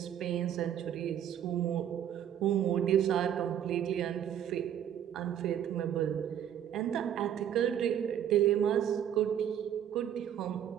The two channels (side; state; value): left; quieter; 10.1 dB